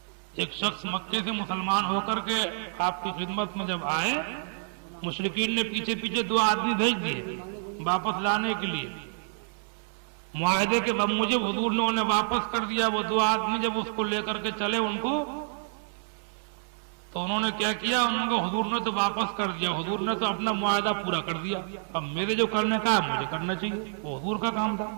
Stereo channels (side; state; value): left; silent; 59 dB below the other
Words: ایک شخص مکے سے مسلمان ہو کر کے آپ کی خدمت میں جب آئے، مشرکین نے پیچھے پیچھے 2 آدمی بھیج دیے واپس لانے کے لیے، معاہدے کے بموجب حضور نے انہیں واپس کر دیا۔ وہ 2 آدمی جب اس کو لے کر کے چلے ان کو، تو انہوں نے کیا کیا، انہوں کو حضور نے تو واپس کر دیا، حضور نے تو اپنا معاہدہ پورا کر دیا، اب میرے جو کرنے کا ہے مجھے کرنا چاہیے، وہ حضور کا کام تھا۔